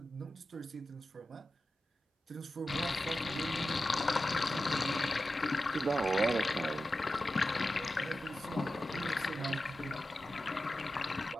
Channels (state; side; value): normal; both; correlation 0.93